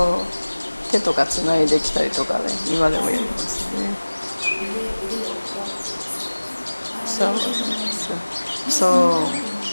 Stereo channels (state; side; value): inverted; both; correlation -1.00